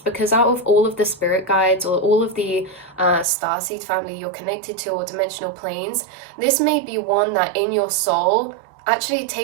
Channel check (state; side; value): drops out; left; at 3.2 s